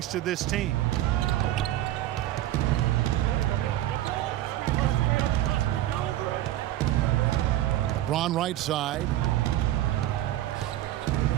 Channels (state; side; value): quieter; left; 13.9 dB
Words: to this team. LeBron right side.